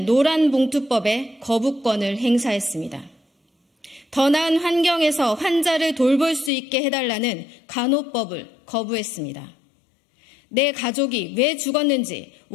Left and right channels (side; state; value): right; drops out; at 6.5 s